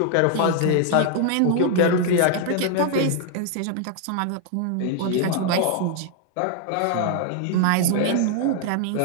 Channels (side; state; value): both; different; correlation 0.00